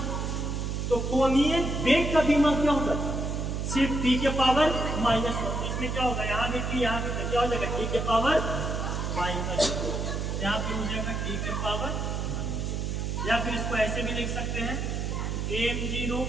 तो कोणीय वेग का बीमा क्या होगा? सिर्फ t के पावर -1। इसमें क्या होगा? यहाँ भी t, यहाँ भी क्या हो जाएगा? t के पावर -2। यहाँ पे हो जाएगा t के पावर -2। या फिर इसको ऐसे भी लिख सकते हैं m0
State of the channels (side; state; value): right; noise; hum, 2 dB below the sound